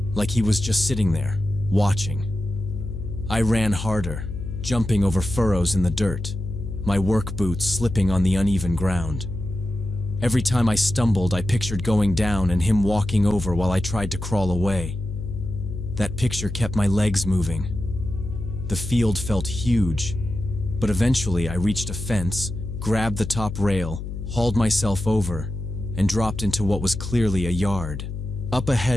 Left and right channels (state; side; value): noise; left; hum, 7 dB below the sound